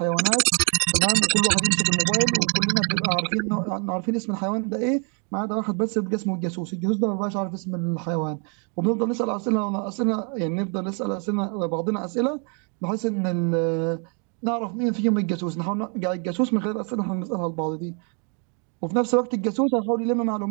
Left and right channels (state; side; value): quieter; left; 39.3 dB